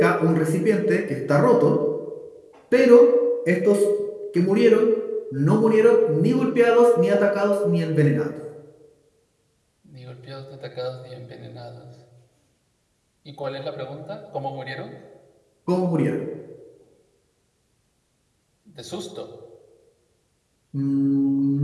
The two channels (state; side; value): identical; both; correlation 1.00